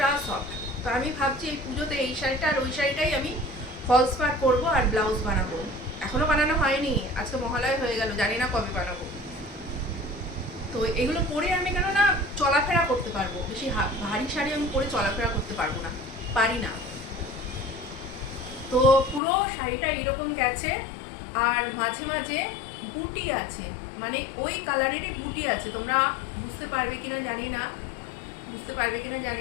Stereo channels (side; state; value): right; drops out; at 19.2 s